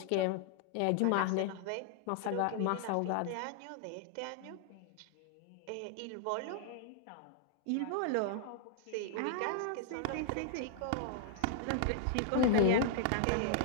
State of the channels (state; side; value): different; both; correlation -0.01